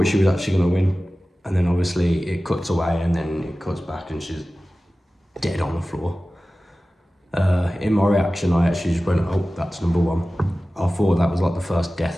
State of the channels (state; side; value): normal; both; correlation 0.96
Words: she was actually going to win, and then obviously it cuts away and then it cuts back and she's dead on the floor. In my reaction, I actually just went, oh, that's number 1. I thought that was like the first death